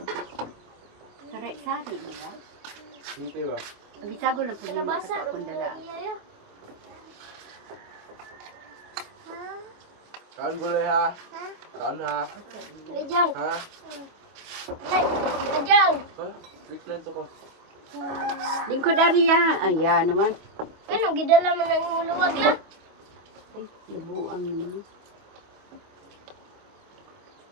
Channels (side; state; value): left; late; 25 ms